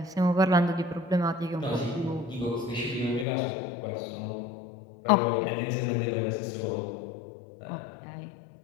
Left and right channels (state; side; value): drops out; right; at 3.2 s